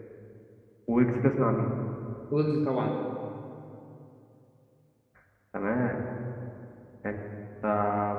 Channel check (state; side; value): identical; both; correlation 1.00